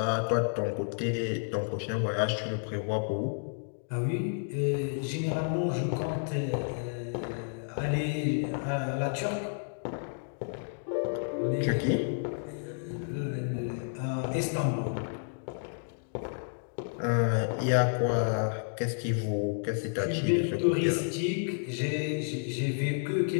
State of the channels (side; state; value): right; silent; digital silence